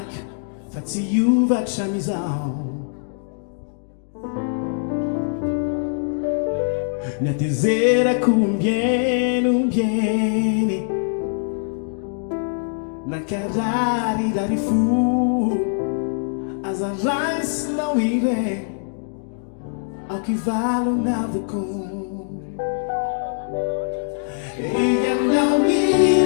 Fatsiuva chamizao Nyatezera kumbieni bieni Nakarari dari fu Azarais não irei Ao que vale o navucum E não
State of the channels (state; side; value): silent; right; digital silence